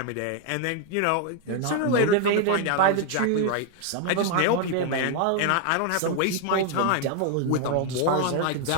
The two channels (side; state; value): both; different; correlation 0.01